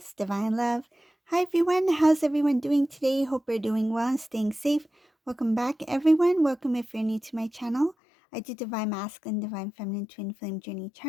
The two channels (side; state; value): right; drops out; at 8.0 s